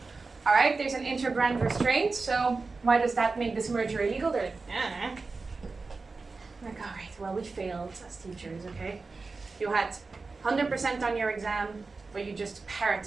all right, there's an inter-brand restraint, so why does that make this merger illegal? They're like, like, all right, well, we failed as teachers, okay? You had 100% on your exam, but you just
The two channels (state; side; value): quieter; left; 4.0 dB